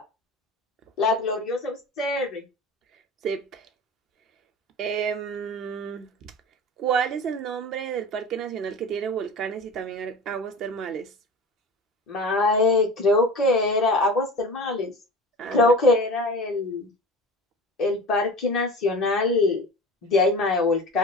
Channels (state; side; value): normal; both; correlation 0.34